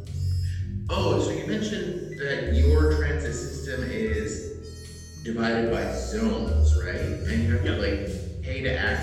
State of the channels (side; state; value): both; identical; correlation 1.00